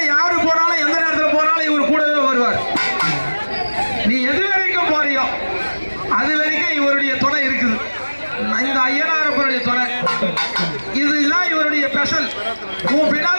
யாரு போனாலும் எந்த நேரத்தில் போனாலும் இவர் கூடவே வருவார். நீ எது வரைக்கும் போறியோ அது வரைக்கும் இவருடைய துணை இருக்குது. இந்த ஐயனாரப்பனுடைய துணை இதுதான் இவருடைய ஸ்பெஷல். உன்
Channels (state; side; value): inverted; both; correlation -1.00